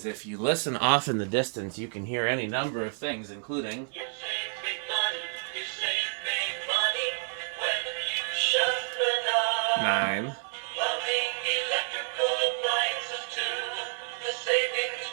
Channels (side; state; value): left; silent; 58 dB below the other